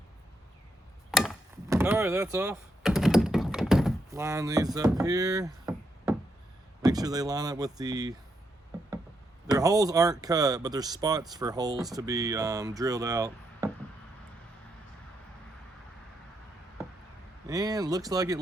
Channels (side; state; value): both; normal; correlation 0.79